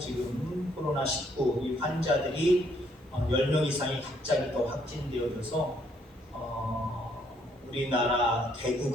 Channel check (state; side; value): normal; both; correlation 0.69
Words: 코로나19 이 환자들이 10명 이상이 갑자기 더 확진되어져서 우리나라